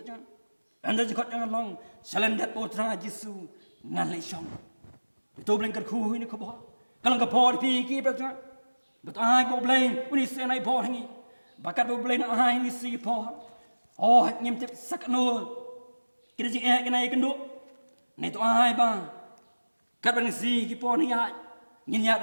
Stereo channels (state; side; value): inverted; both; correlation -1.00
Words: anda jikot jangan long salendat potra Jisu ngan le song itu bling ker khu ini ko bo Kalau ke port pergi betul. Betul ai bo blame when is senai port hangi. Bakat bo blame ai ni si port. Oh ngem tip sakno. Kita jing kena kenduk. Nei tu ai ba. Kat bang si ki port ni ai. Ngin ya